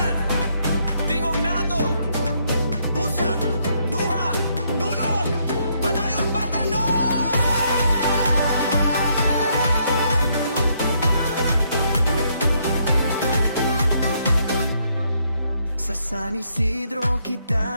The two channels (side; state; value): both; inverted; correlation -0.72